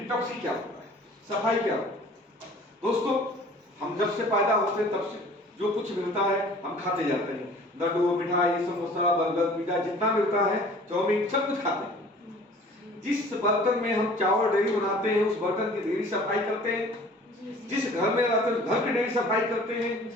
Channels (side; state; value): both; normal; correlation 0.49